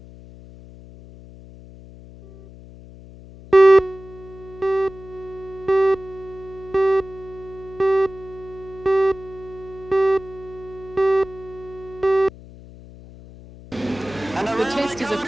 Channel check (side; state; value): left; noise; hum, 18 dB below the sound